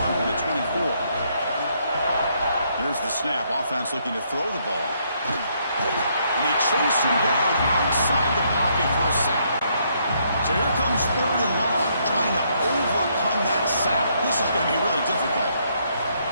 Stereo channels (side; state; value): both; inverted; correlation -0.72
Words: from the 24. Here's the snap. Offense looking to throw the ball. And they chase him down outside the pocket for a sack. So here comes 3rd and long, trying to overcome that sack. This is going to be really difficult.